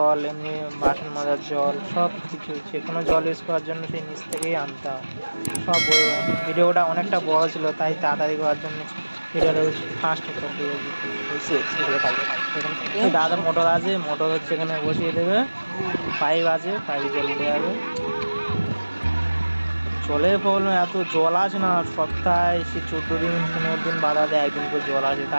এমনি বাসন মাজার জল, সব কিছু যে কোনো জল ইউজ করার জন্য সেই নিচ থেকেই আনতে হয় সব। ভিডিওটা অনেকটা বড় ছিল, তাই তাড়াতাড়ি করার জন্য ভিডিওটা ফাস্ট করে দিয়েছি। দাদা মোটর আছে, মোটর হচ্ছে এখানে বসিয়ে দেবে, পাইপ আছে, পাইপ জল উঠে যাবে। জলের প্রবলেম, এত জল আছে না, সপ্তাহে সে 14 দিন 15 দিন বাদে একদিন করে জল আসে,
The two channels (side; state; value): both; inverted; correlation -1.00